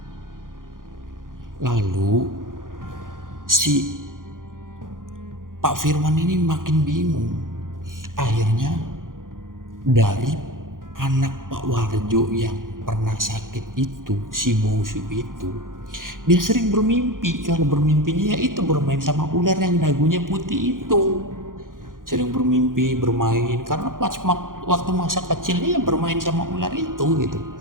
Lalu si Pak Firman ini makin bingung. Akhirnya dari anak Pak Warjo yang pernah sakit itu, si Busu itu, dia sering bermimpi. Kalau bermimpinya ya itu bermain sama ular yang dagunya putih itu. Sering bermimpi bermain karena pas waktu masa kecilnya bermain sama ular itu gitu.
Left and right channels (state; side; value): late; left; 0.90 ms